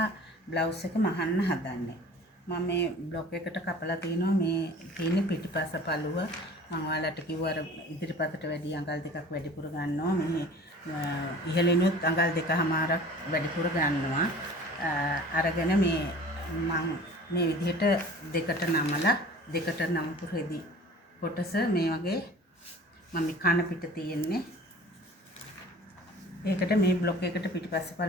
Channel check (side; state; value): both; normal; correlation 0.44